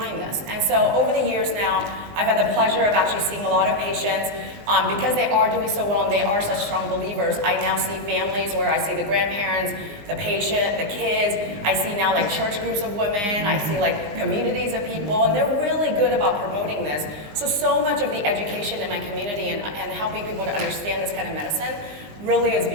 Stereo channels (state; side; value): late; left; 19 ms